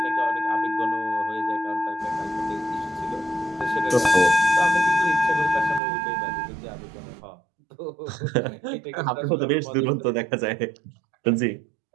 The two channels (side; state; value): left; drops out; at 5.8 s